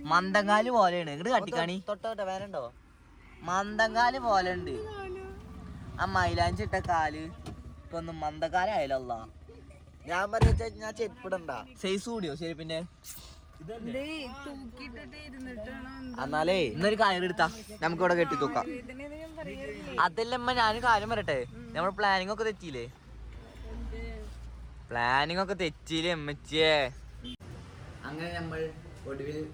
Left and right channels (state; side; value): identical; both; correlation 1.00